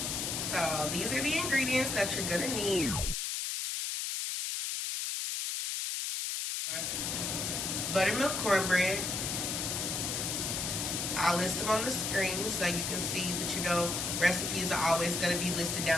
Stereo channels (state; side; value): noise; left; hiss, 1 dB below the sound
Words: So these are the ingredients that you're gonna need. Buttermilk cornbread. I'll list them on the screen so you can see, but you know recipes are always going to be listed